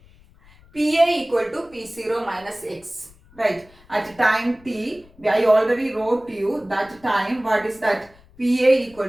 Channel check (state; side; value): noise; left; rumble, 27 dB below the sound